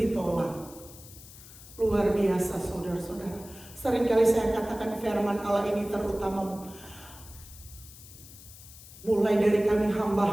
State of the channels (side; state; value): left; noise; hiss, 18 dB below the sound